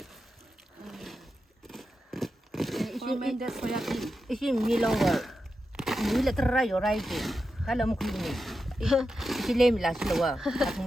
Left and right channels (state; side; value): normal; both; correlation 0.89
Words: recommended soya bean. 이게 밀롱거 밀레 트라이 요라이지 달라 먹으니 이게 레밀라실와